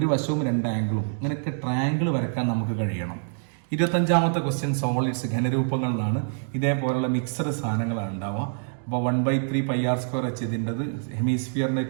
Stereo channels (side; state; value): left; silent; digital silence